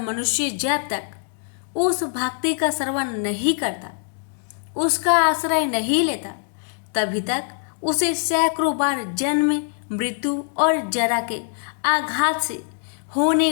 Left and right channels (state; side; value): silent; right; 57 dB below the other